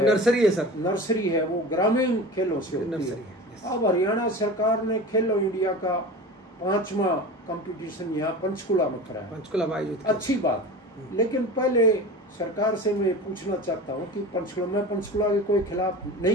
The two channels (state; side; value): normal; both; correlation 0.33